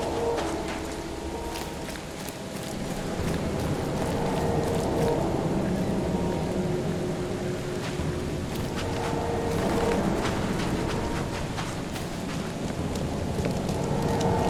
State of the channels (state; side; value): identical; both; correlation 1.00